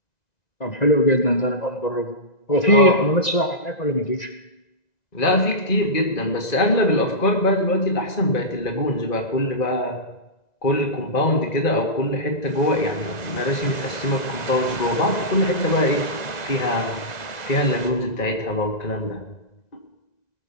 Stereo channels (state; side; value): late; right; 1.9 ms